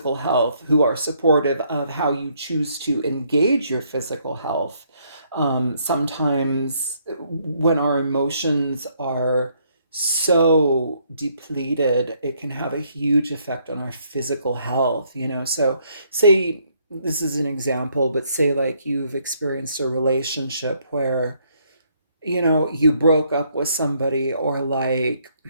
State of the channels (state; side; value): inverted; both; correlation -0.69